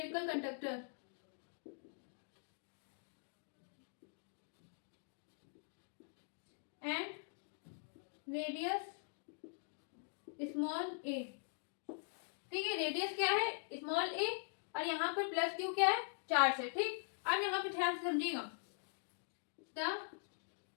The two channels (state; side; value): silent; right; digital silence